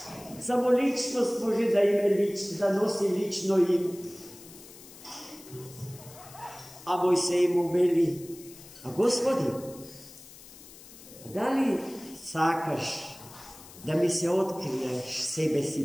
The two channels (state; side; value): noise; left; hiss, 19 dB below the sound